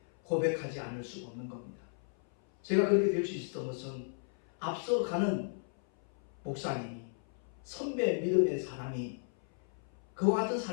고백하지 않을 수가 없는 겁니다. 제가 그렇게 될 수 있었던 것은 앞서가는 목사님이, 선배 믿음의 사람이 그와 같은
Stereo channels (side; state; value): right; silent; 55 dB below the other